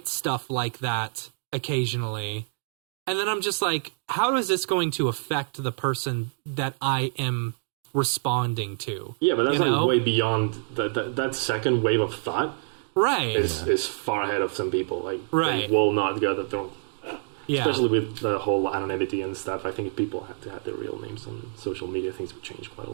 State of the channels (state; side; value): silent; left; digital silence